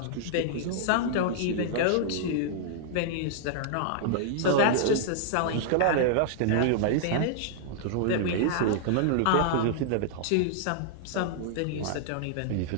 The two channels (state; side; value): different; both; correlation -0.01